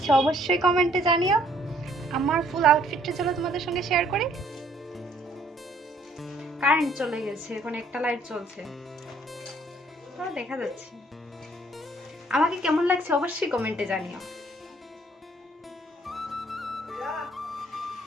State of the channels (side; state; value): both; normal; correlation 0.63